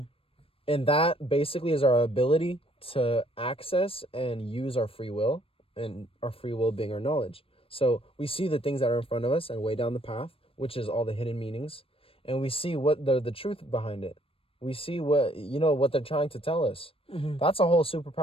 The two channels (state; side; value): late; right; 0.27 ms